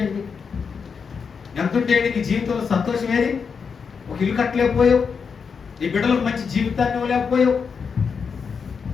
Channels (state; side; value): quieter; right; 5.9 dB